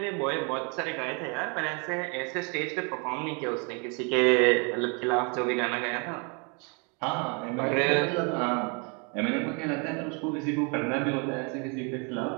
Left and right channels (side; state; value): left; quieter; 34.4 dB